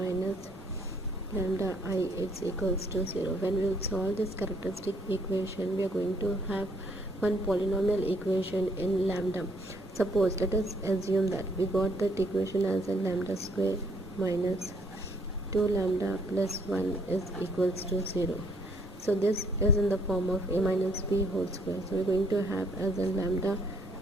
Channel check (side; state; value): both; normal; correlation 0.67